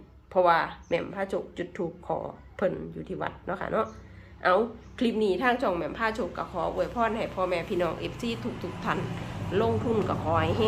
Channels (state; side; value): identical; both; correlation 1.00